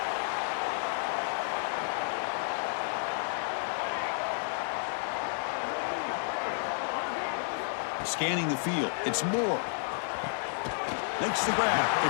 Scanning the field, it's Moore. Makes the grab,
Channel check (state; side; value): silent; right; digital silence